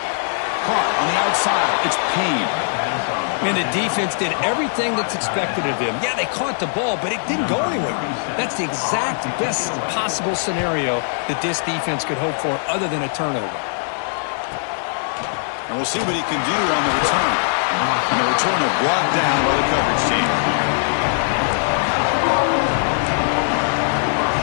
Caught on the outside, it's Payne. And the defense did everything that's expected of them. Yeah, they caught the ball, but it didn't go anywhere. That's the exact best possible scenario that this defense could hope for other than a turnover. And we'll see what he can do on the return. And the returner brought down by the coverage team.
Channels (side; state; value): right; silent; digital silence